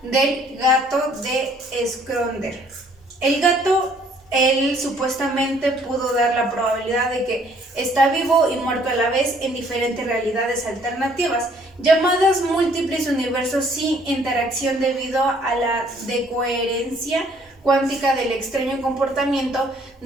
del gato de Schrödinger. El gato, él supuestamente pudo dar la probabilidad de que está vivo y muerto a la vez en diferentes realidades alternativas, llamadas múltiples universos sin interacción, debido a la decoherencia cuántica del extraño comportamiento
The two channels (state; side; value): normal; both; correlation 0.61